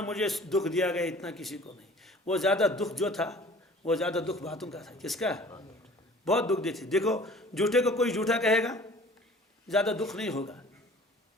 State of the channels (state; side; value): normal; both; correlation 0.49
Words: मुझे दुख दिया गया इतना किसी को नहीं। वो ज़्यादा दुख जो था वो ज़्यादा दुख बातों का था। किसका? बहुत दुख देते। देखो झूठे को कोई झूठा कहेगा ज़्यादा दुख नहीं होगा।